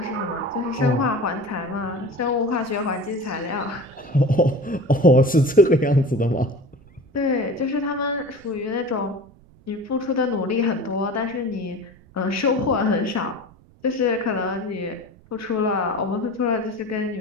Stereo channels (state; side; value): noise; right; rumble, 26 dB below the sound